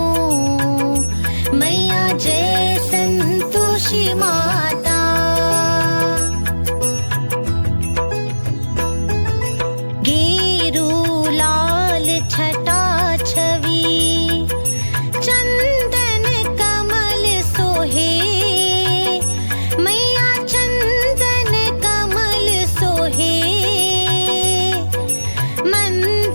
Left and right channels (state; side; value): inverted; both; correlation -1.00